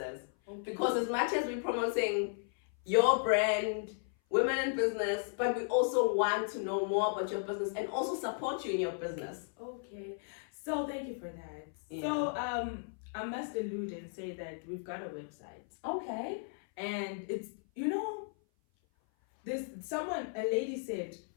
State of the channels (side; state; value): right; silent; 54 dB below the other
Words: Because as much as we're promoting your brand, women in business, but we also want to know more about your business and also support you in your business. Okay, so thank you for that. Yeah. So I must allude and say that we've got a website. Okay. And it's, you know, there's a lady said,